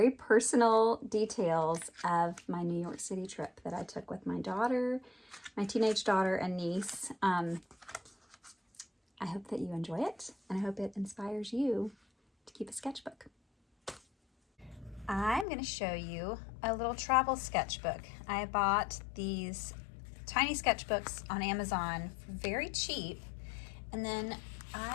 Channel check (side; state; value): right; drops out; at 15.5 s